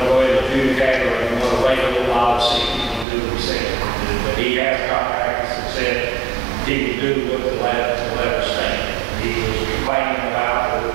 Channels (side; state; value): left; drops out; at 3.1 s